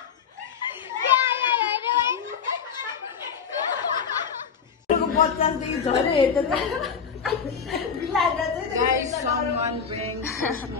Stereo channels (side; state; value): right; quieter; 6.6 dB